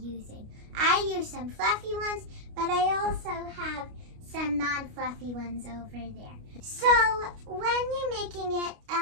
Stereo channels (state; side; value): late; left; 29 ms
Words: I use some fluffy ones, but I also have some non-fluffy ones over there. So when you're making it,